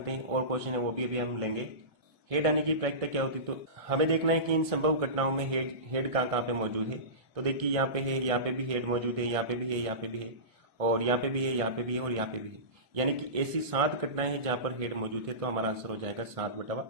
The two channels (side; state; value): left; late; 1.6 ms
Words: हैं, और क्वेश्चन है वो भी अभी हम लेंगे। हेड आने की प्रायिकता क्या होती है, तो हमें देखना है कि इन संभव घटनाओं में हेड कहाँ कहाँ पे मौजूद है। तो देखिए यहाँ पे है, यहाँ पे भी हेड मौजूद है, यहाँ पे भी है, यहाँ पे भी है, और यहाँ पे भी है, यहाँ पे भी है, और यहाँ पे भी है। यानी कि ऐसी 7 घटनाएं हैं जहां पर हेड मौजूद है, तो हमारा आंसर हो जाएगा